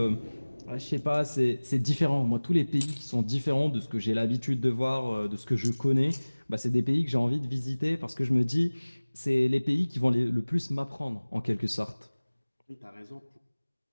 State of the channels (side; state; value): both; inverted; correlation -1.00